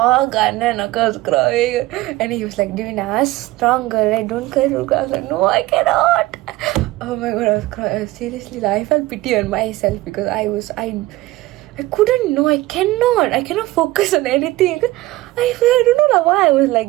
and Akka was crying. And he was like, Divina, strong girl, right? Don't cry. I was like, no, I cannot. Oh my god, I was crying. Seriously, I felt pity on myself because I couldn't know. I cannot focus on anything. I don't know why I was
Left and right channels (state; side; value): quieter; left; 18.3 dB